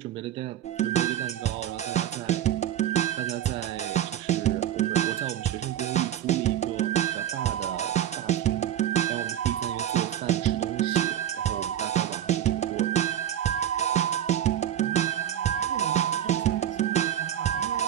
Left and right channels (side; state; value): left; quieter; 11.0 dB